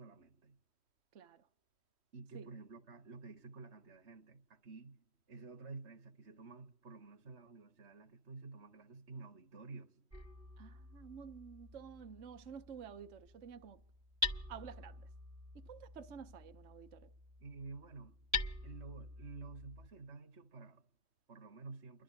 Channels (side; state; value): left; late; 3.1 ms